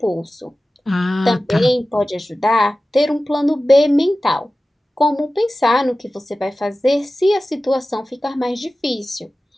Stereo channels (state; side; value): normal; both; correlation 0.96